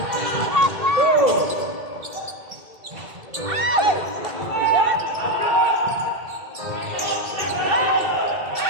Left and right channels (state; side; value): late; left; 2.7 ms